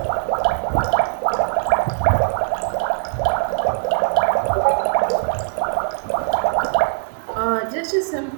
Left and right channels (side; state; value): left; silent; 65 dB below the other